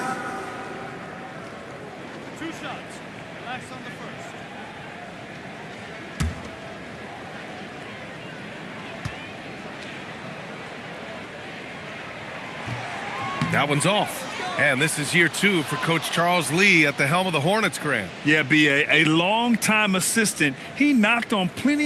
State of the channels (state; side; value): identical; both; correlation 1.00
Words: shots. Last on the first. That one's off. And this is year 2 for Coach Charles Lee at the helm of the Hornets, Grant. Yeah, B.A., a long-time assistant. He knocked on